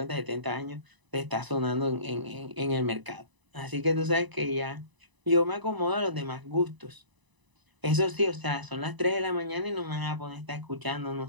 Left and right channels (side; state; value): left; late; 1.0 ms